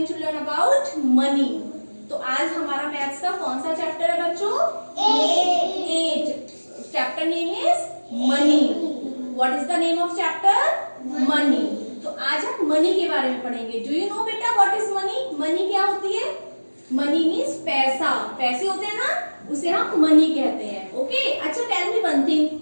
to learn about money. तो आज हमारा मैथ्स का कौन सा चैप्टर है बच्चों? 8। Chapter name is money. What is the name of chapter? Money. तो आज हम मनी के बारे में पढ़ेंगे। डू यू नो बेटा व्हाट इज मनी? मनी क्या होती है? मनी मीन्स पैसा। पैसे होते हैं ना, उसे हम मनी कहते हैं। ओके अच्छा, tell me one thing,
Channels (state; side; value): inverted; both; correlation -1.00